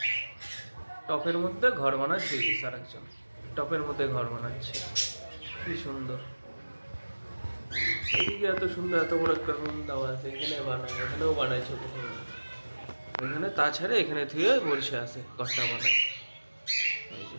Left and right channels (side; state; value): both; inverted; correlation -1.00